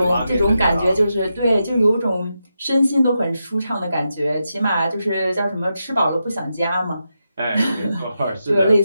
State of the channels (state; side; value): inverted; both; correlation -0.87